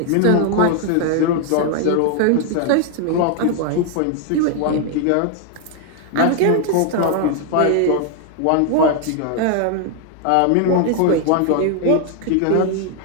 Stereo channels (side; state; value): both; different; correlation 0.00